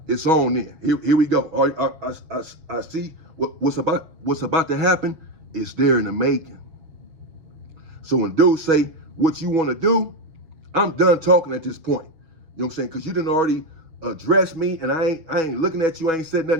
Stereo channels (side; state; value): left; late; 6.2 ms